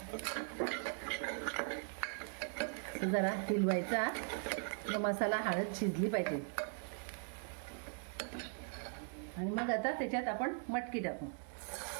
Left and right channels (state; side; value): silent; left; 51 dB below the other